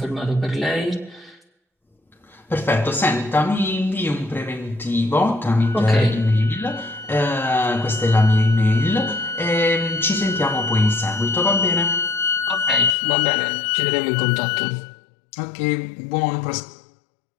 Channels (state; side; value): drops out; right; at 13.0 s